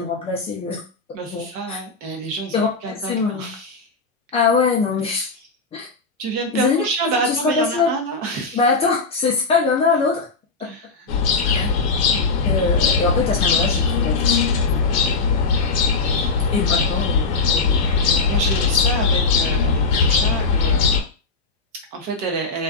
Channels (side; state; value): right; quieter; 4.0 dB